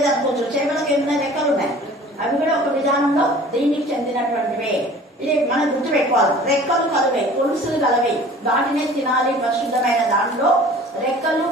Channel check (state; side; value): normal; both; correlation 0.46